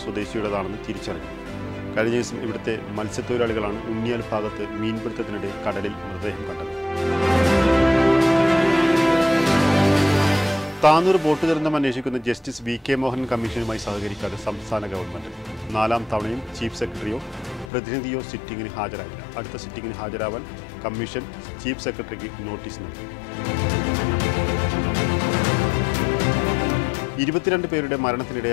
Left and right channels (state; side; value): drops out; right; at 17.7 s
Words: സ്വദേശിയുടേതാണെന്ന് തിരിച്ചറിഞ്ഞു. കഴിഞ്ഞ ദിവസം ഇവിടുത്തെ മത്സ്യത്തൊഴിലാളികളാണ് ഉണ്ണിയാൽ ഭാഗത്ത് മീൻപിടുത്തത്തിനിടെ കടലിൽ മൃതദേഹം കണ്ടത്. താനൂർ ബോട്ട് ദുരന്തം അന്വേഷിക്കുന്ന ജസ്റ്റിസ് വി കെ മോഹൻ കമ്മീഷനുമായി സഹകരിക്കാതെ സംസ്ഥാന ഗവൺമെന്റ് 4ാം തവണയും ചീഫ് സെക്രട്ടറിയോ പ്രതിനിധിയോ സിറ്റിംഗിന് ഹാജരായില്ല. അടുത്ത സിറ്റിംഗിന് ഹാജരാവാൻ കമ്മീഷൻ ചീഫ് സെക്രട്ടറിക്ക് നോട്ടീസ് നൽകി. 22 പേരുടെ